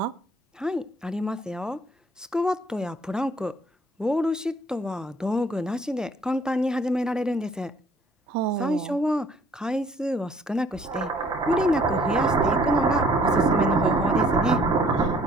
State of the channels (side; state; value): both; normal; correlation 0.59